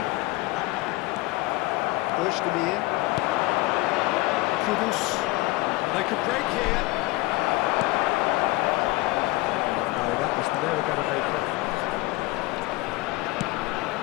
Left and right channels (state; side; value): quieter; right; 20.8 dB